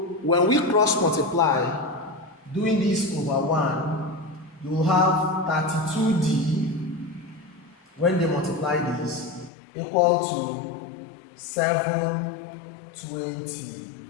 when we cross multiply, doing this over 1, you will have 32D when they multiply this equal to 720.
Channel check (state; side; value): drops out; right; at 9.5 s